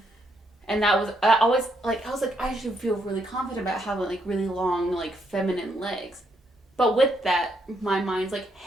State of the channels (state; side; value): normal; both; correlation 0.76